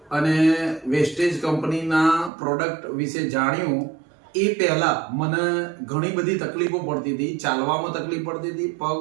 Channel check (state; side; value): drops out; left; at 2.3 s